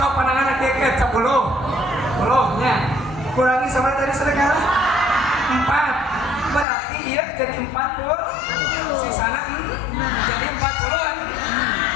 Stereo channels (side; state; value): right; drops out; at 6.7 s